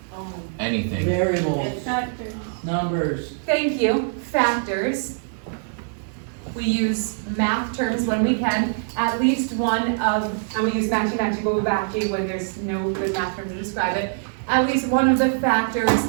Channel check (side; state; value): left; silent; 63 dB below the other